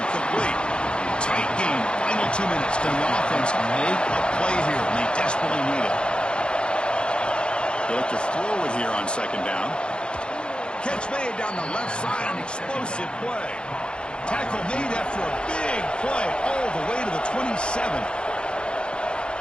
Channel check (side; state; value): right; late; 0.053 ms